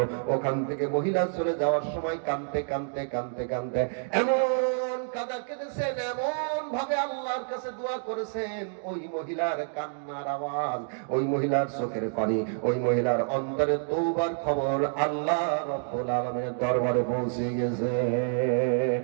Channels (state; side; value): silent; left; digital silence